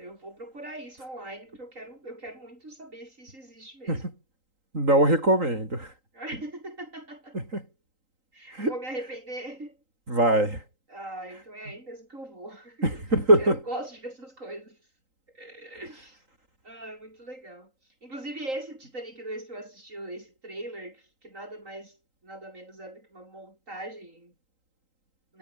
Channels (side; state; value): left; late; 3.8 ms